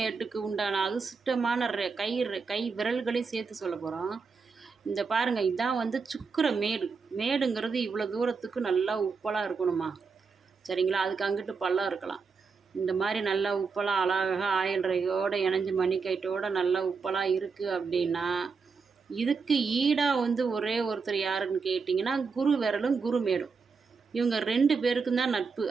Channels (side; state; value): left; quieter; 5.0 dB